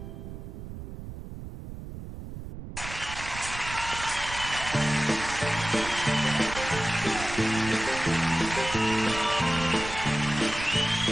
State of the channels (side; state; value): right; noise; rumble, 10 dB below the sound